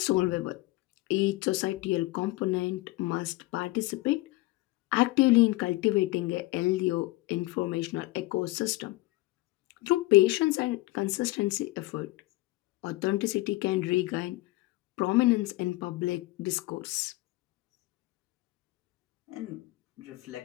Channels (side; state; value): right; quieter; 20.2 dB